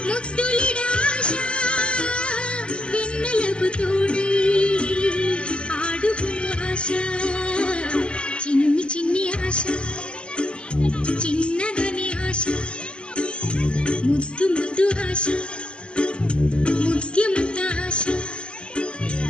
ముద్దులిడ ఆశ వెన్నెలకు తోడై ఆడుకును ఆశ చిన్ని చిన్ని ఆశ చిన్నదని ఆశ ముద్దు ముద్దు ఆశ ముత్యమంత ఆశ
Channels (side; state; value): right; late; 0.052 ms